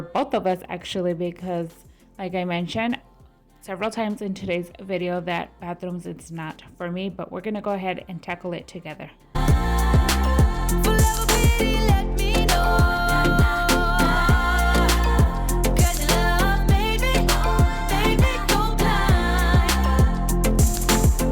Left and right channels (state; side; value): identical; both; correlation 1.00